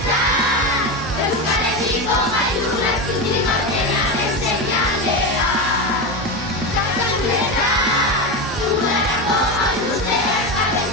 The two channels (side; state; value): both; normal; correlation 0.17